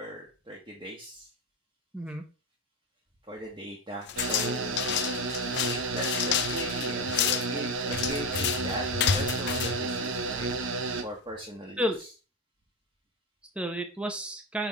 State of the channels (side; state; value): both; normal; correlation 0.15